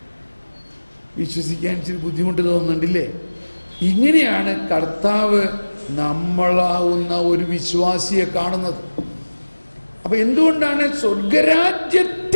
വിശ്വസിക്കാൻ ഇച്ചിരി ബുദ്ധിമുട്ട് തോന്നുന്നുണ്ടല്ലേ? ഇങ്ങനെയാണ് കർത്താവ് നമ്മളാവുന്ന ഒരു വിശ്വാസിയെ കാണുന്നത്. അപ്പൊ എന്തുകൊണ്ടാണ്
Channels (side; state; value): both; inverted; correlation -1.00